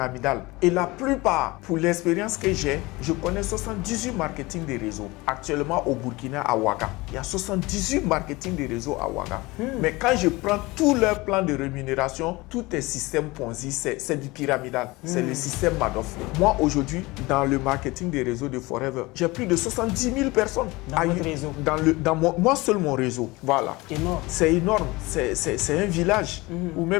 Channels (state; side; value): quieter; right; 22.2 dB